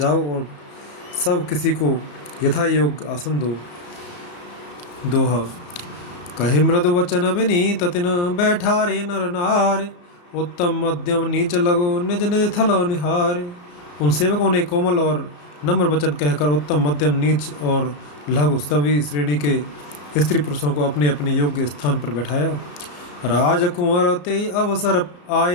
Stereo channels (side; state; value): right; late; 34 ms